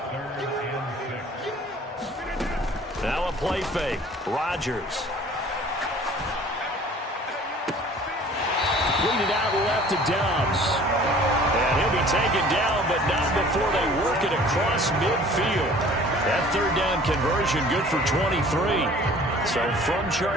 Now a play fake. Rodgers. Lead it out left to Dobbs. And he'll be taken down, but not before they work it across midfield. That third down conversion good for 23. So from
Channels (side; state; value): both; normal; correlation 0.49